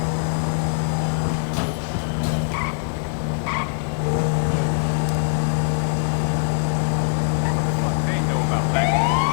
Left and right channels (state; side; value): silent; right; digital silence